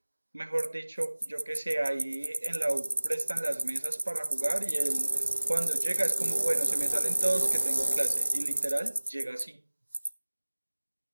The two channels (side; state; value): both; inverted; correlation -1.00